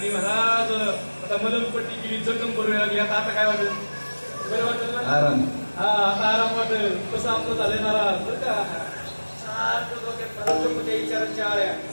महाराज आता मलमपट्टी केली, जखम बरोबर लागली. आता काय वाटेल? बरं वाटेल ना? हा आता आराम वाटेल. कसं आपलं झालंय महाराज बरं का, सारखं डोक्यात विचारांच्या आळ्या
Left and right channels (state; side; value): inverted; both; correlation -1.00